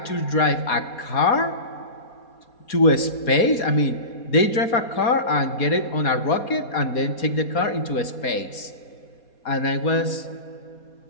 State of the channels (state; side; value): late; right; 4.2 ms